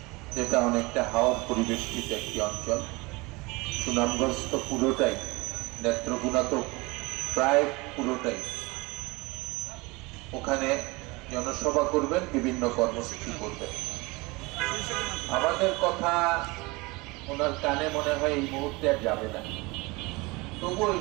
যেটা অনেকটা হাওর পরিবেষ্টিত একটি অঞ্চল। সুনামগঞ্জ তো পুরোটাই, নেত্রকোনা তো প্রায় পুরোটাই। ওখানে জনসভা করবেন, বিভিন্ন কর্মসূচি করবেন। আমাদের কথা ওনার কানে মনে হয় এই মুহূর্তে আর যাবে না। তবুও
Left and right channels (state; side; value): quieter; left; 24.4 dB